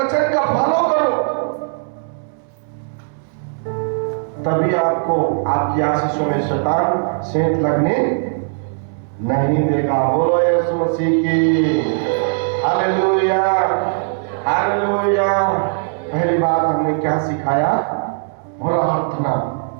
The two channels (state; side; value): silent; left; 67 dB below the other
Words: का फॉलो करो, तभी आपको आपकी आशीषों में शैतान सेंध लगने नहीं देगा। बोलो यीशु मसीह की। Hallelujah, hallelujah. पहली बात हमने क्या सिखाया? प्रार्थना।